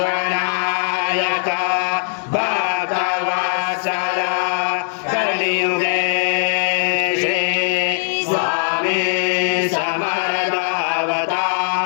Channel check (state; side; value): silent; right; digital silence